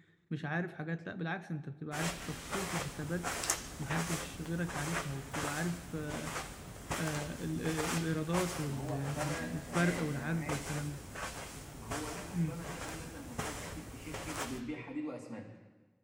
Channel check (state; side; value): identical; both; correlation 1.00